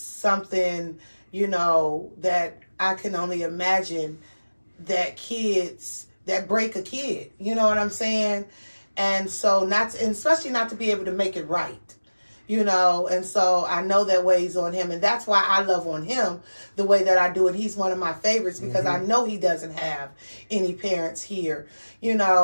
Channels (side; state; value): both; inverted; correlation -1.00